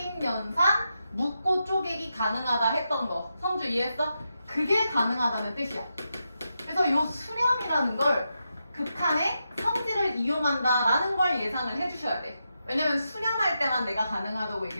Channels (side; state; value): both; inverted; correlation -0.86